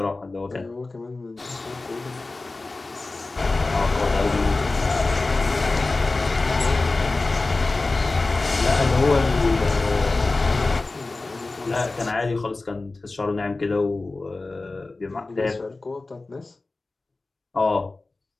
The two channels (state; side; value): quieter; right; 3.4 dB